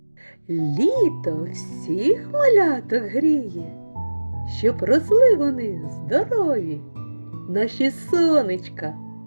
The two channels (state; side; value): inverted; both; correlation -1.00